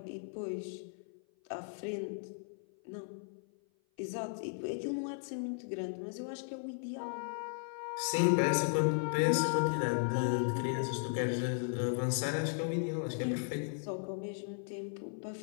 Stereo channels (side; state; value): right; silent; 54 dB below the other